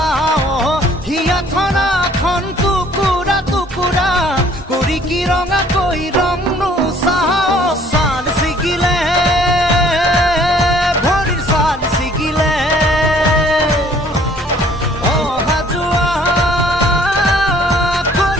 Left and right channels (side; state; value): both; normal; correlation 0.57